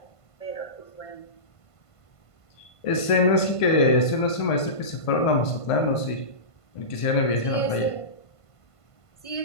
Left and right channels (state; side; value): late; right; 1.5 ms